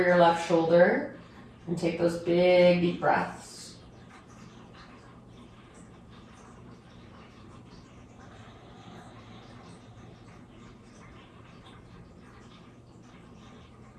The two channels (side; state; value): both; identical; correlation 1.00